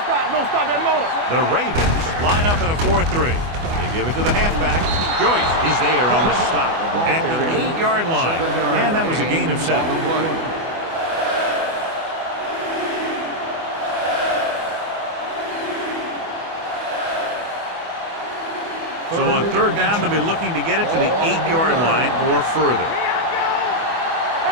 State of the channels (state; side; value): late; left; 24 ms